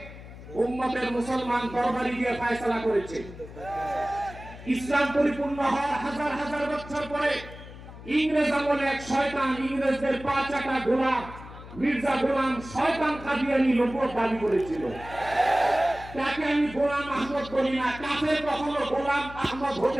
উম্মতের মুসলমান তরবারি দিয়ে ফয়সালা করেছে। ইসলাম পরিপূর্ণ হওয়ার হাজার হাজার বছর পরে ইংরেজ আমলে এক শয়তান, ইংরেজদের পা চাটা গোলাম মির্জা গোলাম শয়তান কাদিয়ানি নবুয়ত দাবি করেছিল। তাকে আমি গোলাম আহমদ বলি না, কাফের কখনো গোলাম আহমদ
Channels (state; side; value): noise; left; hum, 15 dB below the sound